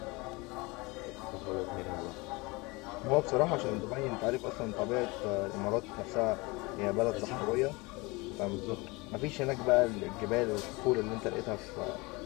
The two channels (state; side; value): quieter; right; 25.0 dB